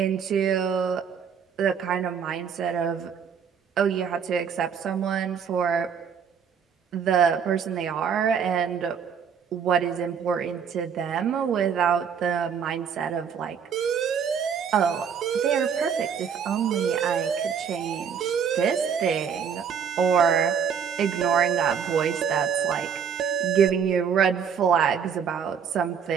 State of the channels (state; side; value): quieter; left; 7.2 dB